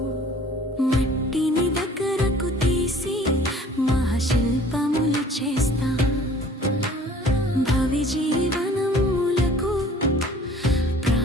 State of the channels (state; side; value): normal; both; correlation 0.51